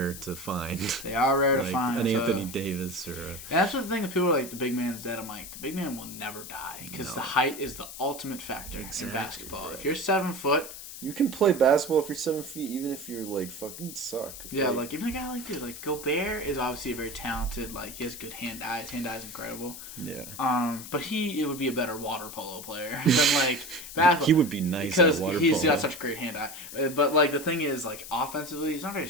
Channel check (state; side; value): noise; left; hiss, 11 dB below the sound